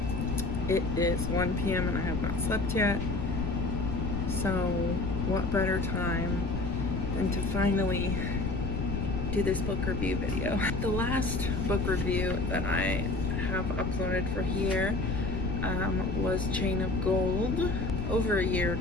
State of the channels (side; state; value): left; noise; rumble, 2 dB below the sound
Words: It is 1 p.m. and I have not slept yet, so what better time than to finally do this book review video. The last book review that I have uploaded for here was Chain of Gold over a year